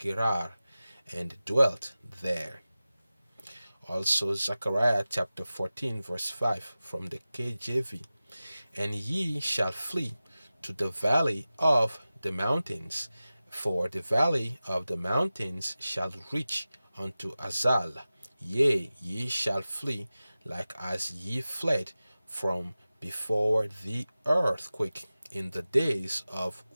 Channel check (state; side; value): inverted; both; correlation -0.96